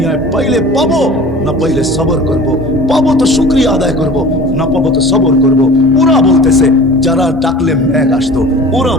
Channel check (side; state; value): both; normal; correlation 0.41